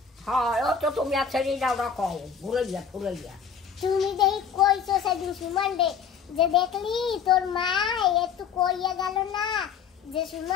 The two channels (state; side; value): quieter; right; 6.9 dB